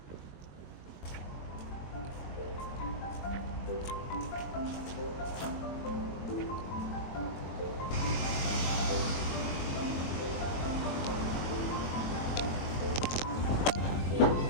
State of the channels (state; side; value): late; right; 22 ms